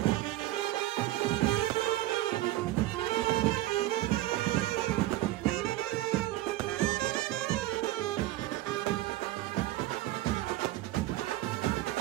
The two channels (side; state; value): left; quieter; 16.1 dB